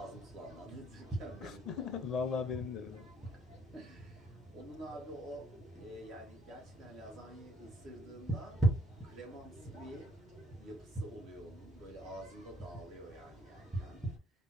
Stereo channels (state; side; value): normal; both; correlation 0.65